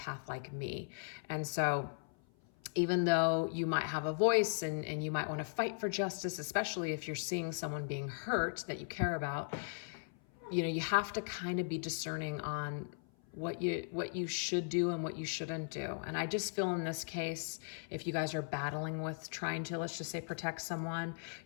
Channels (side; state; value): right; silent; 53 dB below the other